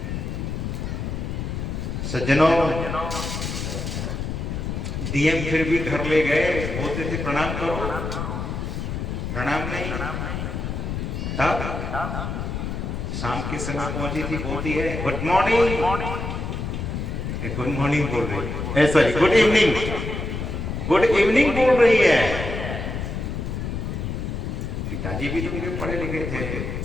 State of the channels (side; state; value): left; noise; rumble, 4 dB below the sound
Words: सज्जनों, डीएम फिर भी घर ले गए, बोलते थे प्रणाम करो, प्रणाम नहीं। तब शाम के समय पहुंची थी, बोलती है गुड मॉर्निंग, गुड मॉर्निंग बोल रही है, sorry good evening, good evening बोल रही है। पिताजी भी तो मेरे पढ़े लिखे थे,